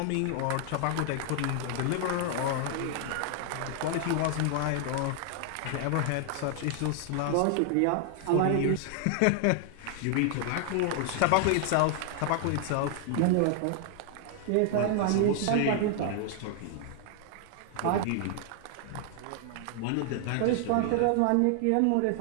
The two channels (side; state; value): both; different; correlation 0.00